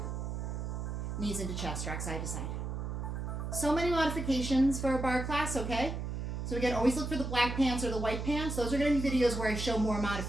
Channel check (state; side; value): noise; right; hum, 4 dB below the sound